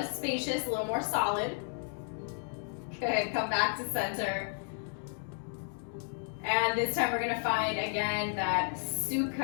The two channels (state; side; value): silent; right; 56 dB below the other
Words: spacious, a little more solid. Good, come back to center. And this time we're gonna find, again, that